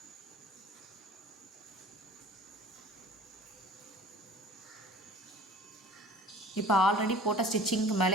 இப்போ ஆல்ரெடி போட்ட ஸ்டிச்சிங்க்கு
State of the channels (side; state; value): both; normal; correlation 0.45